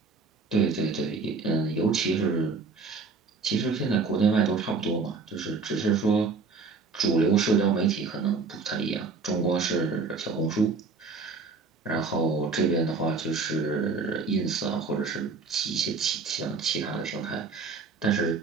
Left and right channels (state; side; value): quieter; left; 4.4 dB